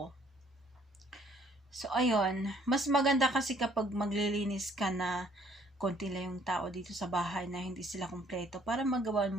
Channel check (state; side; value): normal; both; correlation 0.61